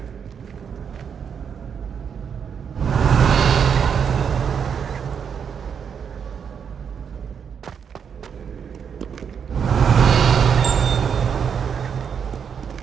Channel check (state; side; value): quieter; left; 7.2 dB